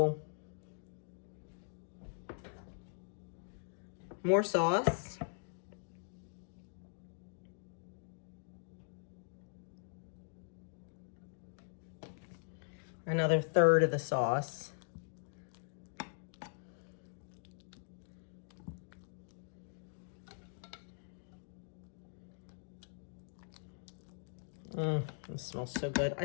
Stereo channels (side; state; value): right; silent; digital silence